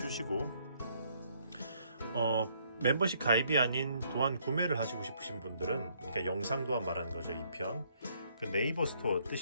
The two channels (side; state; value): both; inverted; correlation -0.68